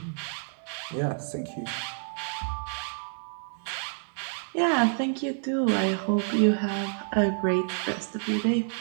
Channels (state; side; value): silent; left; 59 dB below the other